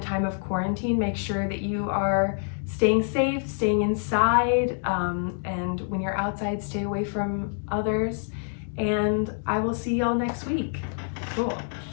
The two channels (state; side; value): silent; right; 61 dB below the other